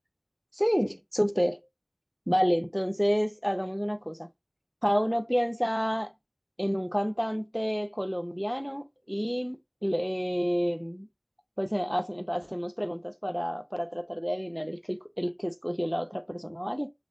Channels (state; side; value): identical; both; correlation 1.00